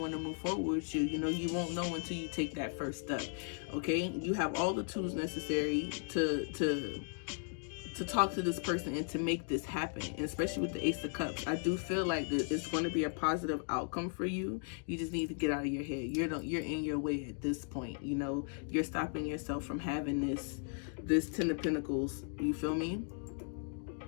to move forward with you. You know, you won't know until you take that first step, okay? You have all the tools necessary to talk to this person and to make this happen, and especially with the Ace of Cups. I do feel like that it's going to be a positive outcome for you. You just need to get out of your head. You're in your way at this point. You know, you're stopping yourself from having this 10 of Pentacles. You feel me?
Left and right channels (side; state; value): right; silent; 53 dB below the other